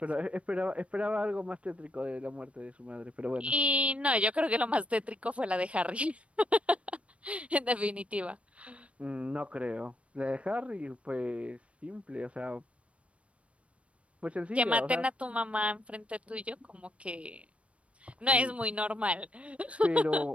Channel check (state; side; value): late; left; 0.062 ms